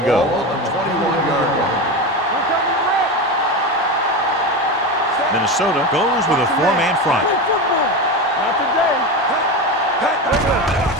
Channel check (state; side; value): normal; both; correlation 0.21